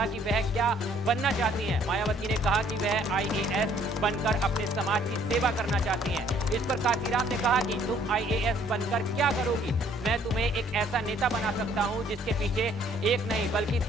कि वह क्या बनना चाहती हैं, मायावती ने कहा कि वह आईएएस बनकर अपने समाज की सेवा करना चाहती हैं। इस पर काशीराम ने कहा कि तुम आईएएस बनकर क्या करोगी? मैं तुम्हें एक ऐसा नेता बना सकता हूं जिसके पीछे एक नहीं बल्कि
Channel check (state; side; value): normal; both; correlation 0.61